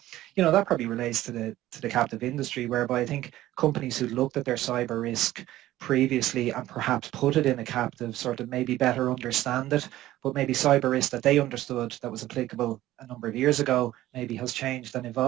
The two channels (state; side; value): quieter; left; 15.1 dB